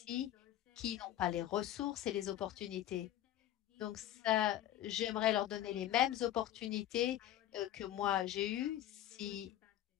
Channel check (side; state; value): right; quieter; 12.6 dB